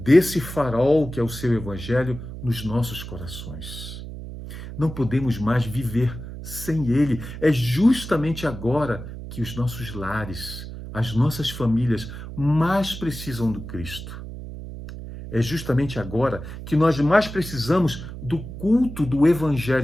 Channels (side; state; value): right; noise; hum, 10 dB below the sound